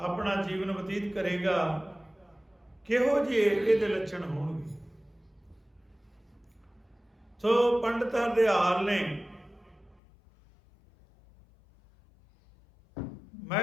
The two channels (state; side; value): drops out; right; at 10.0 s